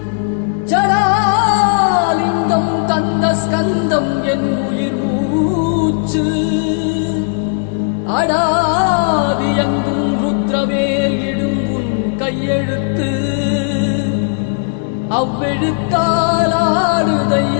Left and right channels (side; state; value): right; silent; 61 dB below the other